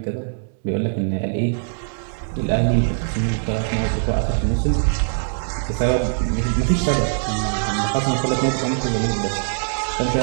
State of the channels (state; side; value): silent; left; digital silence